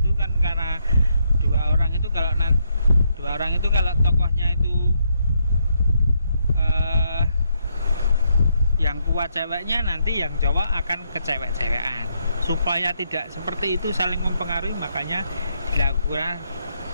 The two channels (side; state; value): both; inverted; correlation -0.77